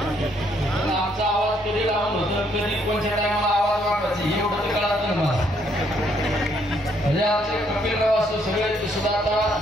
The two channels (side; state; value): both; normal; correlation 0.70